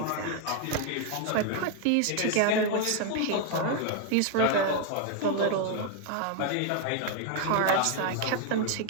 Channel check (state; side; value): different; both; correlation 0.01